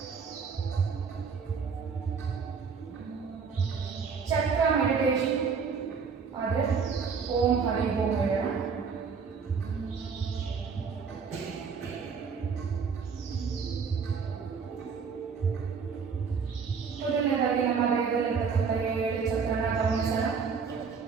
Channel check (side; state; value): left; quieter; 5.8 dB